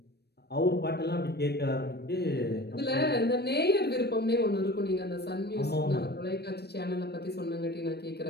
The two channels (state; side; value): late; right; 0.47 ms